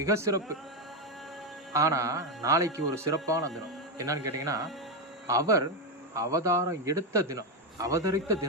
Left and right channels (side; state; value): both; normal; correlation 0.08